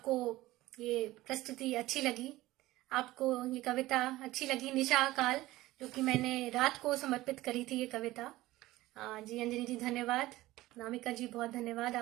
ये प्रस्तुति अच्छी लगी, आपको ये कविता अच्छी लगी, निशा काल, जो कि मैंने रात को समर्पित करी थी ये कविता। जी अंजलि जी धन्यवाद, नामिका जी बहुत धन्यवाद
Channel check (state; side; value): quieter; left; 17.4 dB